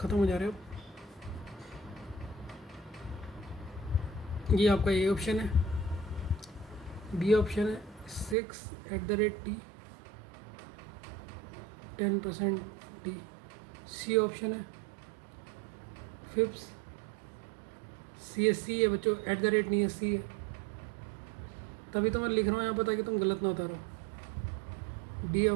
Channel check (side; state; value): left; drops out; at 8.3 s